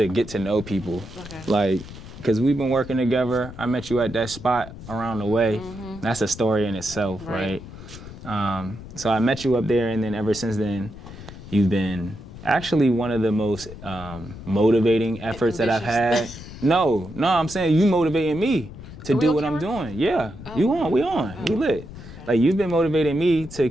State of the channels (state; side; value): noise; left; rumble, 14 dB below the sound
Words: get to know people. Okay. Like, because we've been working together. I met you at that spot around the way. Mm-hmm. That's a story in itself, right? So I met you up there, and then ever since then, you've been actually one of the most motivating efforts that I've had. No, I'm saying you motivating me to do what I'm doing. Yeah, we lit. Okay. Like, you've been motivating me to